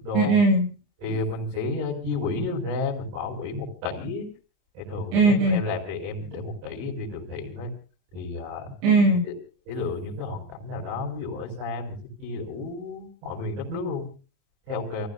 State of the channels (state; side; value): late; left; 29 ms